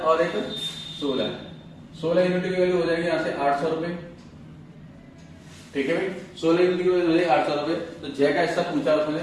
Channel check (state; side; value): identical; both; correlation 1.00